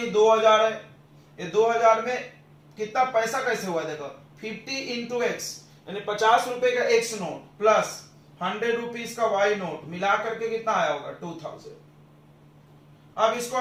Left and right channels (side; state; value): both; identical; correlation 1.00